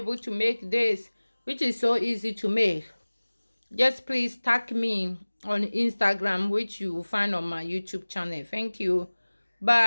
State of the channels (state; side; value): inverted; both; correlation -1.00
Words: to make this, which is so easy to make, just please tag me on Instagram, which you will find on my YouTube channel. Thank you.